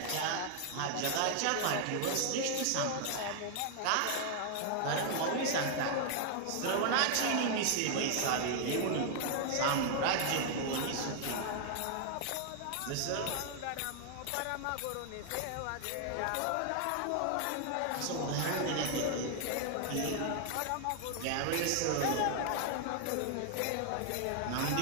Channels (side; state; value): both; different; correlation 0.00